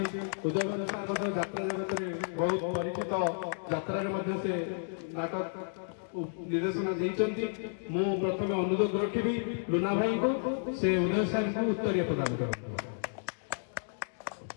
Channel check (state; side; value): silent; right; digital silence